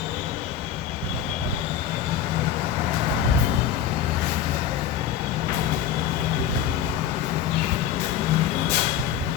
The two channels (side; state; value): right; quieter; 9.5 dB